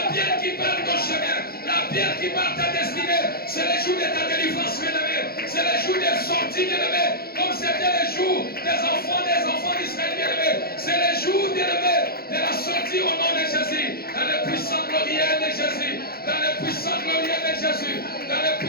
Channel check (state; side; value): late; right; 0.44 ms